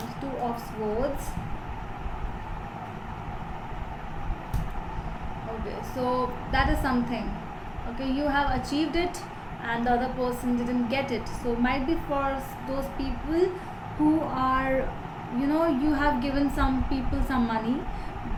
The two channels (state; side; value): identical; both; correlation 1.00